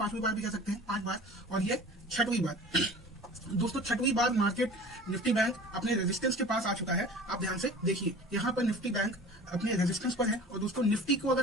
बार भी कह सकते हैं, 5 बार, और ये छठवीं बार। दोस्तों छठवीं बार मार्केट निफ्टी बैंक अपने रेजिस्टेंस के पास आ चुका है। आप ध्यान से देखिए यहाँ पर निफ्टी बैंक अपने रेजिस्टेंस पर है। और दोस्तों निफ्टी को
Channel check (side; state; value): both; normal; correlation 0.41